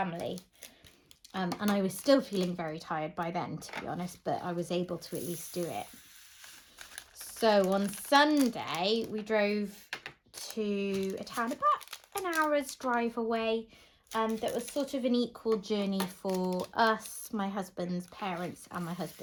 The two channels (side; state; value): both; identical; correlation 1.00